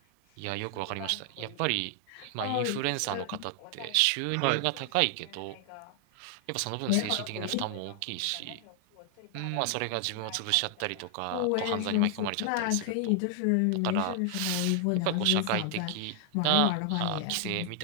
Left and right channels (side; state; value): both; different; correlation 0.00